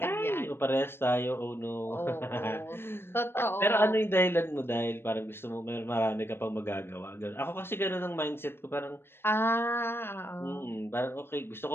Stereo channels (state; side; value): late; right; 0.11 ms